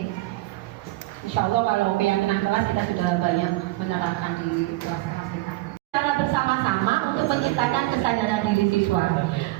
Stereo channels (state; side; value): quieter; left; 19.2 dB